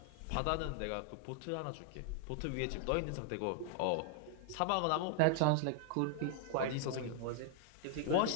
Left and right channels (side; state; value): both; different; correlation 0.00